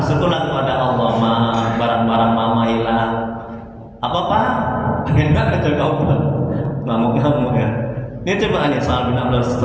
kepada Allah, Ma, barang-barang mama hilang." Apa Pak? Pengen banget kata kau, ngamuk-ngamuk ya. Ini coba nih Sa'al bin Abdullah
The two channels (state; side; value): identical; both; correlation 1.00